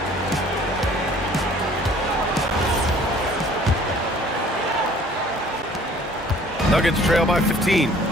Nuggets trail by 15.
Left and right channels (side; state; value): both; normal; correlation 0.54